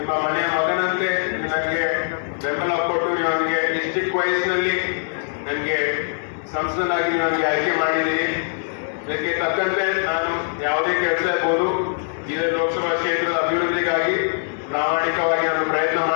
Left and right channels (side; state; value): right; silent; digital silence